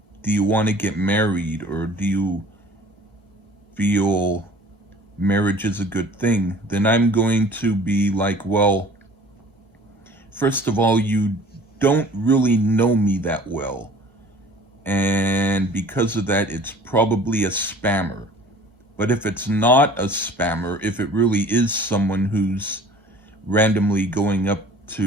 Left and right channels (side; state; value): both; normal; correlation 0.48